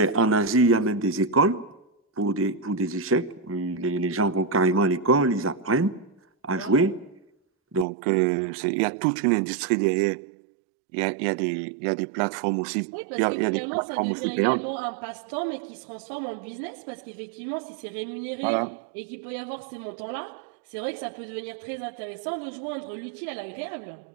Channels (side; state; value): left; drops out; at 7.9 s